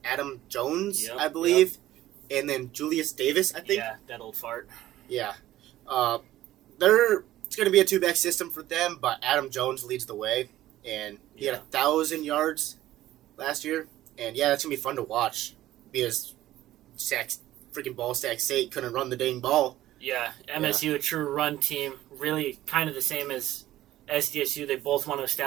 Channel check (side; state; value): left; quieter; 14.5 dB